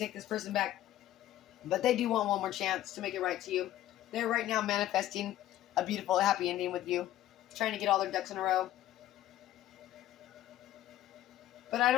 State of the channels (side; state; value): right; quieter; 13.5 dB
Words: this person back, but they do want one more chance to make it right to you. They're right now manifesting a beautiful, happy ending with you, trying to get all their ducks in a row. But I